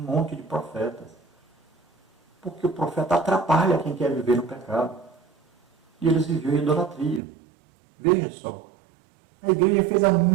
de profetas. Porque o profeta atrapalha quem quer viver no pecado. E eles viviam em idolatria. Veja só. A igreja fez a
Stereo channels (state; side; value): drops out; left; at 7.2 s